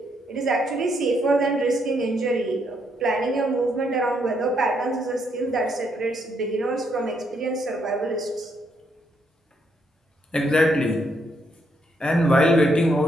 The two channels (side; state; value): both; normal; correlation 0.75